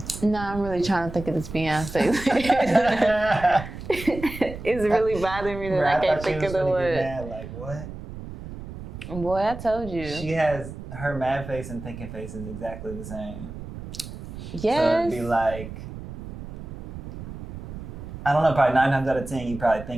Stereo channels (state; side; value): noise; right; rumble, 11 dB below the sound